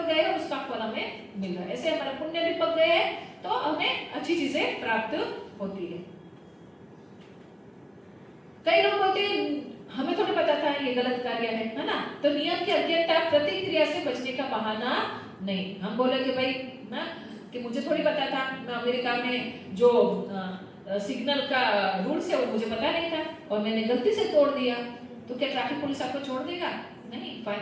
गए, और उसका फल हमें मिल रहा है। ऐसे हमारे पुण्य भी पक गए हैं तो हमें अच्छी चीजें प्राप्त होती है। कई लोग बोलते हैं हमें थोड़ा पता था ये गलत कार्य है ना, तो नियम की अज्ञता प्रतिक्रिया से बचने का बहाना नहीं। हम बोले कि भाई ना कि मुझे थोड़ी पता था अमेरिका में जो सिग्नल का रूल्स है वो मुझे पता नहीं था और मैंने गलती से तोड़ दिया, तो क्या ट्रैफिक पुलिस आपको छोड़ देगा? नहीं,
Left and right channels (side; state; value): both; identical; correlation 1.00